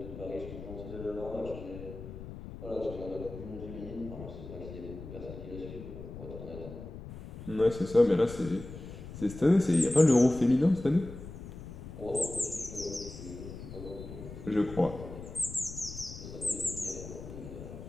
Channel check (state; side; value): noise; left; rumble, 12 dB below the sound